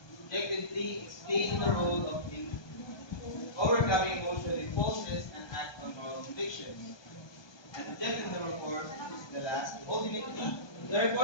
Objective 3, explaining the role of overcoming emotional impulses and act on moral convictions. And objective number 4 is the last. Ultimately, the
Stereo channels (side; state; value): right; late; 1.2 ms